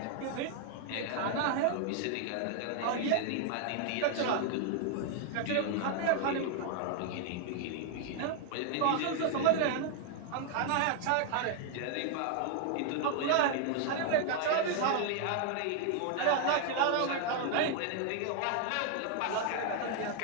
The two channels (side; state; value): both; different; correlation 0.00